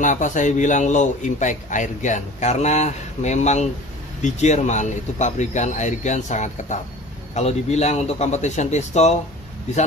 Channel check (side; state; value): both; normal; correlation 0.42